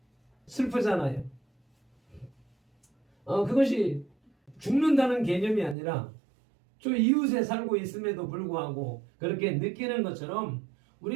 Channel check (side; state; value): left; drops out; at 5.8 s